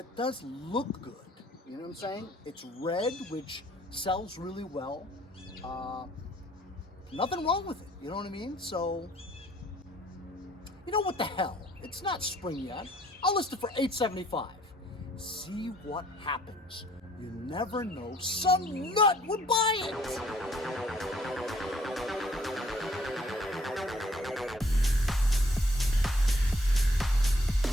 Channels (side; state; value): both; normal; correlation 0.61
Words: does look good. You know what I'm saying? It's red, which sells really well. Nothing wrong with it. You know what I mean? So, you know what the hell? It's not spring yet. I'll list it for $875. See what happens. You never know. Some nut would buy it.